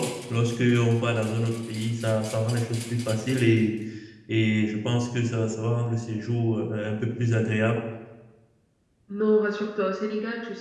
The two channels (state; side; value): identical; both; correlation 1.00